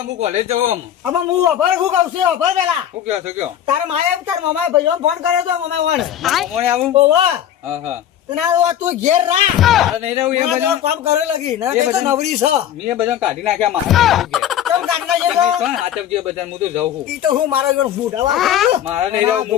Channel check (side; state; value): right; quieter; 10.7 dB